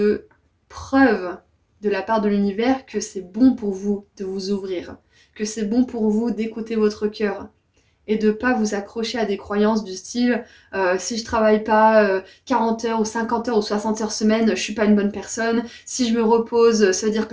preuves de la part de l'univers que c'est bon pour vous de vous ouvrir, que c'est bon pour vous d'écouter votre cœur et de ne pas vous accrocher à des croyances du style si je travaille pas 40 heures ou 50 heures ou 60 heures semaine, je suis pas une bonne personne, si je me repose, ça veut dire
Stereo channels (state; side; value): identical; both; correlation 1.00